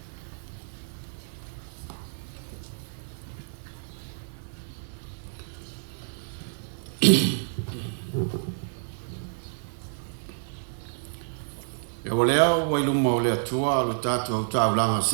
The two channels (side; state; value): left; silent; digital silence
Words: E o leo wai luma o lea tua lo tatu au taulanga